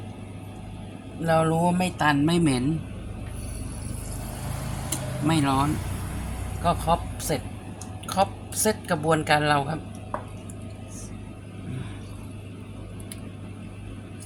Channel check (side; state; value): both; identical; correlation 1.00